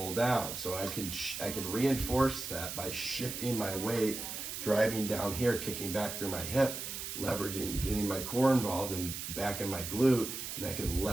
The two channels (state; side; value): noise; right; hiss, 6 dB below the sound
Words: down. So I can reinforce that by shifting my weight, driving down here, kicking back through my hip, leveraging, getting my core involved and back in my glute, and I can